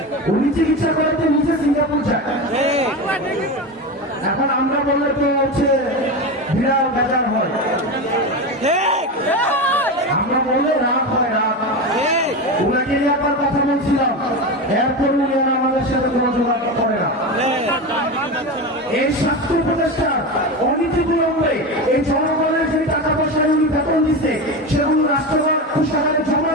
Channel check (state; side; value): normal; both; correlation 0.21